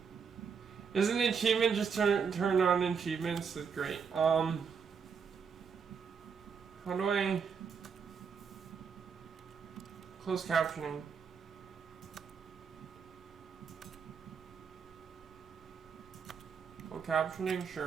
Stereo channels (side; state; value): left; quieter; 6.3 dB